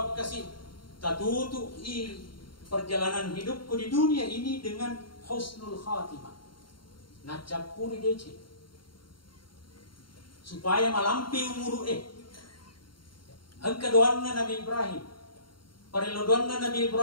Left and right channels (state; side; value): late; right; 0.73 ms